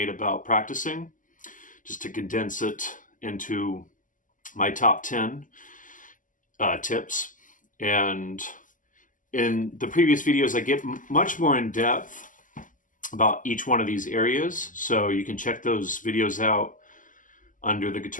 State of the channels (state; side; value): late; right; 0.38 ms